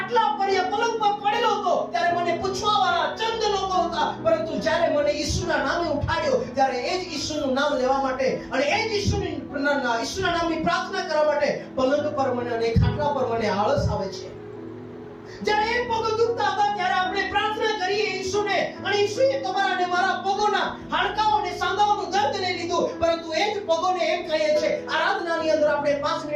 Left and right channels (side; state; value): both; identical; correlation 1.00